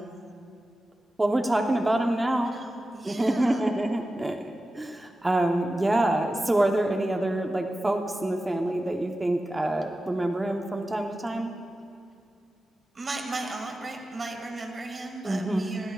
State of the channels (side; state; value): both; normal; correlation 0.93